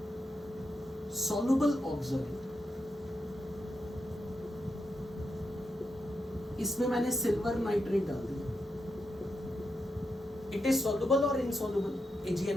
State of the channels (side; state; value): both; normal; correlation 0.85